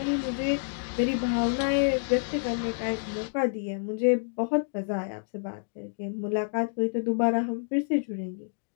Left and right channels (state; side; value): silent; right; digital silence